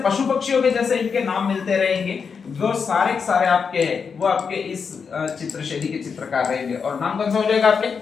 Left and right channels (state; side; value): quieter; right; 5.9 dB